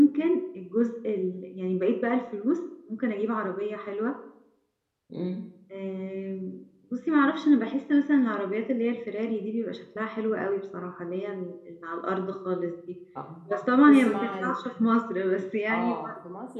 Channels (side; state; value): both; identical; correlation 1.00